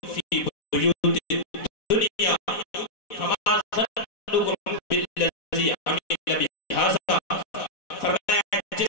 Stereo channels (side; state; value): right; late; 4.1 ms